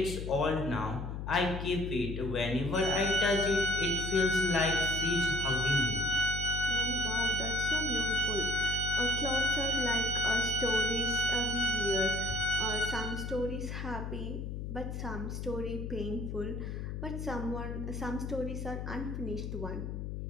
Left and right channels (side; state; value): left; noise; hum, 5 dB below the sound